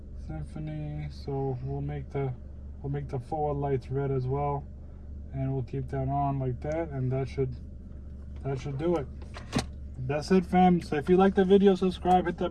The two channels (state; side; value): identical; both; correlation 1.00